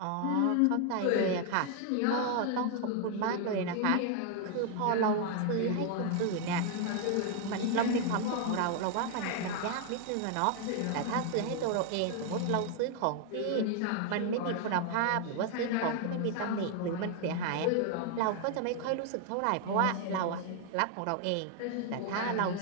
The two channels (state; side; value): different; both; correlation 0.00